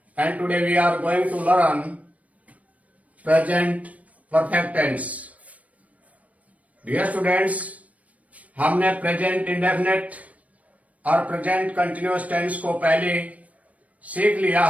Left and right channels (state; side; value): late; left; 0.068 ms